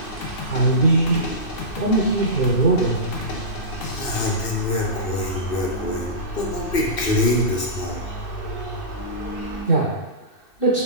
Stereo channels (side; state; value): right; late; 2.6 ms